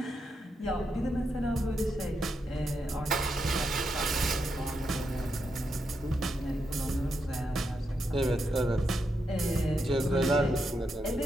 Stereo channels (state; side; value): normal; both; correlation 0.83